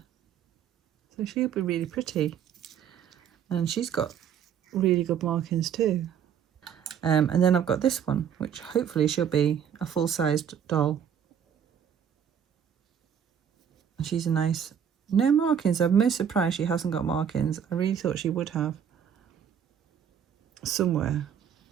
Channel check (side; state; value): left; quieter; 8.4 dB